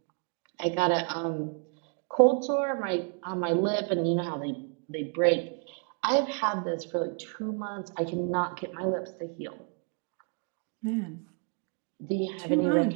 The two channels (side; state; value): left; quieter; 38.6 dB